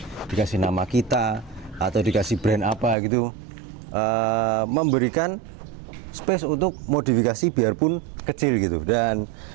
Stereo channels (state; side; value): drops out; left; at 3.0 s